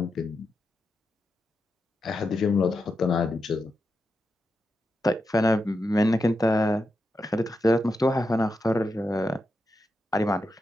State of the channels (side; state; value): both; normal; correlation 0.87